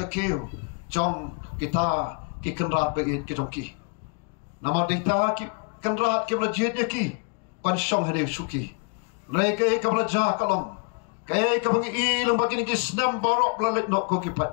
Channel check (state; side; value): quieter; right; 36.3 dB